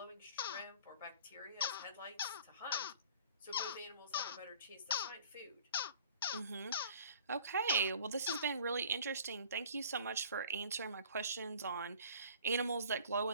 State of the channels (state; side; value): inverted; both; correlation -0.51